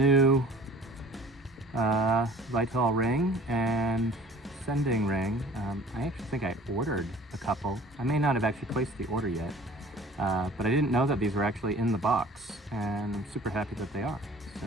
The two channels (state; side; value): normal; both; correlation 0.48